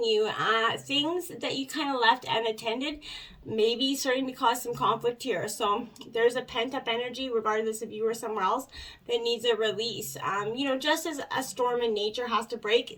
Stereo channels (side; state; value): both; identical; correlation 1.00